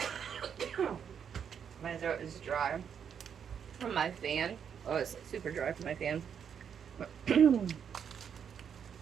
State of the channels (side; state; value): left; quieter; 7.7 dB